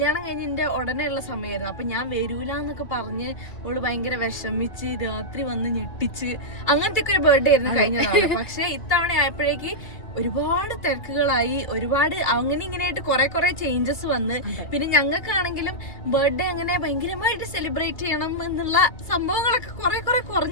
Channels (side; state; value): right; late; 2.5 ms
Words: കഴിഞ്ഞതിന്റെ ഉടനെ ഉള്ള സമയമായിരുന്നു. അപ്പൊ ഞാൻ വരൂലെന്നൊക്കെ പറഞ്ഞ് ഓള് ഭയങ്കര വിഷമിച്ച് രാത്രി വന്ന് ഞെട്ടിച്ച് അങ്ങനത്തെ ഒക്കെ ഒരു ബർത്ത്ഡേ ആയിരുന്നു കഴിഞ്ഞ നാളെ. പക്ഷെ ഇത്തവണ ആയപ്പോഴേക്ക് ഒരുപാട് തിരക്കുകളായി, ഒരുപാട് അങ്ങനെ ഇങ്ങനെയായിട്ട് കുറെ ചേഞ്ചസ് വന്ന്. പിന്നെ ഞങ്ങൾക്കാണെങ്കിലും ബർത്ത്ഡേ അങ്ങനെ ഭയങ്കരമായിട്ട് സെലിബ്രേറ്റ് ചെയ്യണം എന്നുള്ള സംഭവങ്ങളൊക്കെ കുറെ